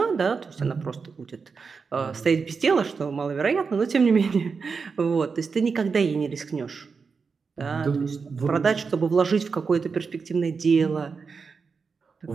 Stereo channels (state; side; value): quieter; left; 5.1 dB